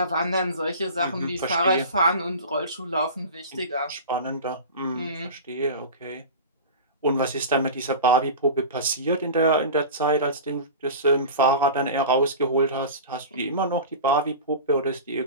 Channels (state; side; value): inverted; both; correlation -0.32